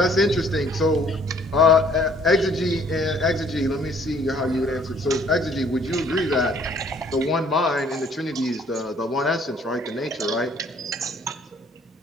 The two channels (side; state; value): both; normal; correlation 0.59